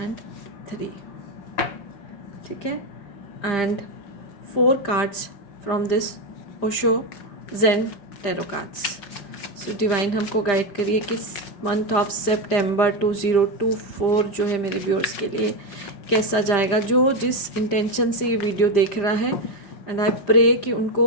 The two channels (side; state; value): right; late; 5.0 ms